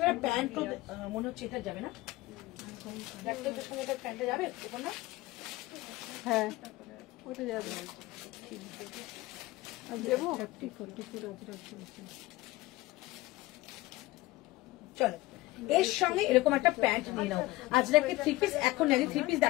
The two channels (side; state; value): right; quieter; 19.1 dB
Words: প্যান্ট মনে হচ্ছে এটা যাবে না, এটার সঙ্গে প্যান্টটা যাবে না? হ্যাঁ ওটা যাবে। দেবো চলো, এর সঙ্গে এরকম একটা প্যান্ট নিয়ে নাও। আজরাকে থ্রি পিস এখন নেই, থ্রি পিস